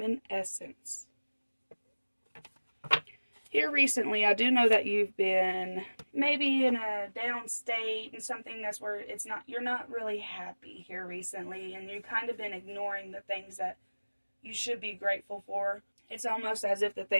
Here recently, I do know that you've been maybe in a down state and something that's where you're not really happy here recently, and you've kind of been ignoring the things that you should be grateful for. It's almost as if the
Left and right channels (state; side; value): inverted; both; correlation -1.00